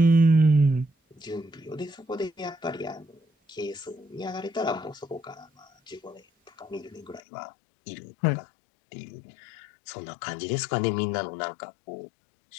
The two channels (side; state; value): right; drops out; at 7.2 s